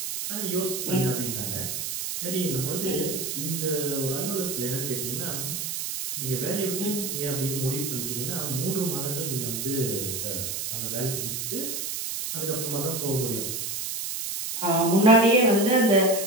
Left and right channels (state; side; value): noise; right; hiss, 3 dB below the sound